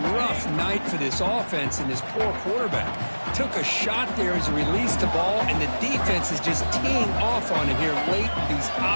rough night for this offense and this poor quarterback. Took a shot there as he released the ball, and the defense is just teeing off on it here late in these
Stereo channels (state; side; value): inverted; both; correlation -1.00